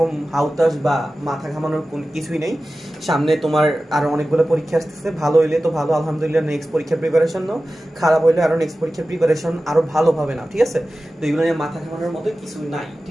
হাউতাস বা মাথা ঘামানোর কিছুই নেই। সামনে তোমার আরো অনেকগুলো পরীক্ষা আসতেছে, ভালো হইলে তো ভালো, আলহামদুলিল্লাহ, নেক্সট পরীক্ষার প্রিপারেশন নাও, খারাপ হইলে আরো নেক্সট পরীক্ষার প্রিপারেশন আরো ভালোভাবে নাও, ঠিক আছে? তো এগুলো নিয়ে মাথা ঘামানোর মতো কিছু নাই,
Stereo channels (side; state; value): both; normal; correlation 0.95